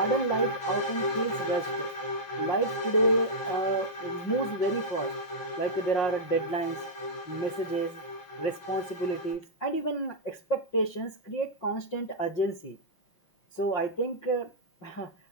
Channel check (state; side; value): late; right; 5.6 ms